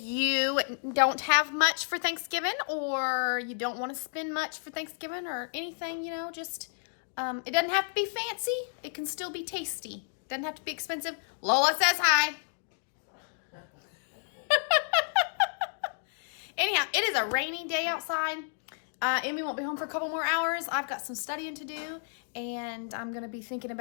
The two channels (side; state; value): right; silent; digital silence